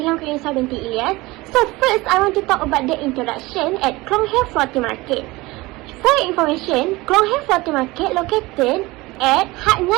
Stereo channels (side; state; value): left; quieter; 21.2 dB